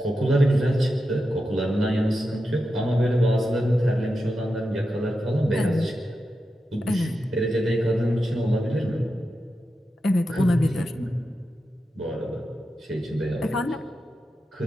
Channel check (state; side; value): normal; both; correlation 0.89